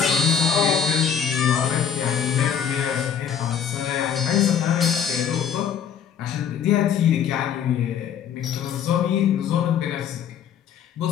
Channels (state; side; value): quieter; right; 8.0 dB